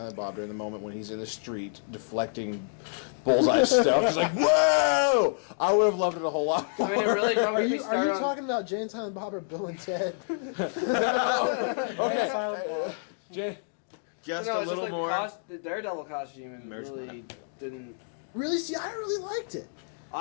Bob during the moment when he's in the street deflecting Bullseye stuff, it's like, whoa! I would have loved it a whole lot. I mean, it really don't Are get me you started on. talking about Jane, Silent Bob, or Bill and Ted? Okay, Silent Bob. Jay, Just No, a it's little just more. the Daredevil costume and Marriage really didn't. Really? See, I really liked it.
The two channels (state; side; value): silent; right; digital silence